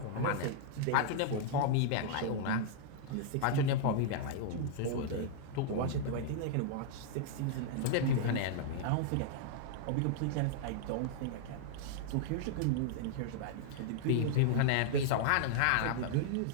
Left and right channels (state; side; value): different; both; correlation -0.01